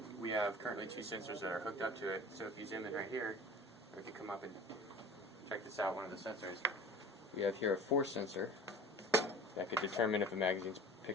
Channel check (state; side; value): normal; both; correlation 0.40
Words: we have currently 2 sensors that are hooked up to it. So if you zoom in right here, or if you come up and check this out, one of the sensors, we have here a force sensor that could determine if a magazine's